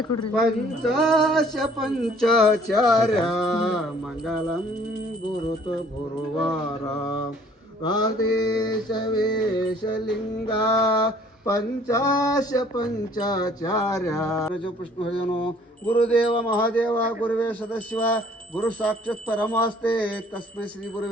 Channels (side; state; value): both; normal; correlation 0.57